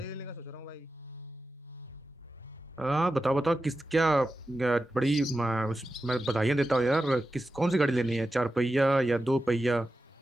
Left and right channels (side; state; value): both; normal; correlation 0.92